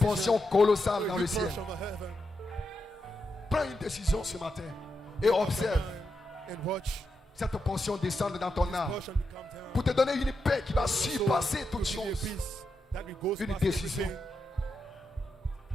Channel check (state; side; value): normal; both; correlation 0.86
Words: colossale dans le ciel. Prends une décision ce matin et observe cette portion descendre dans ton âme pour te donner une paix qui va surpasser toutes choses. Une décision.